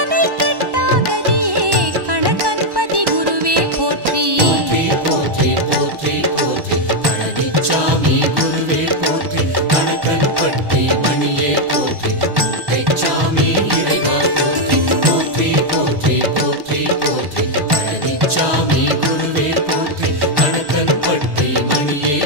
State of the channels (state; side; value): late; left; 1.1 ms